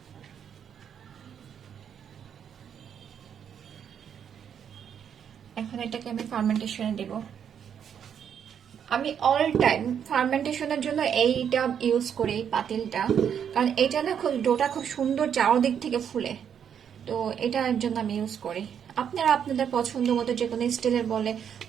এখন এটাকে আমি ফার্মেন্টেশনে দেব। আমি অল টাইম ফার্মেন্টেশনের জন্য এইটা ইউজ করি, এই পাতিলটা, কারণ এটা না খুব ডোটা খুব সুন্দর চারদিক থেকে ফুলে। তো এটার জন্য আমি ইউজ করি। আপনারা আপনাদের পছন্দ মতো যে কোনো স্টিলের বলে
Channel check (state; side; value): quieter; left; 8.3 dB